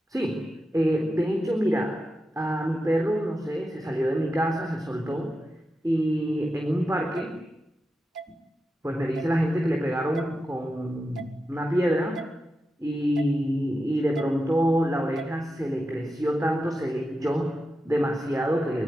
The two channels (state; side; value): normal; both; correlation 0.90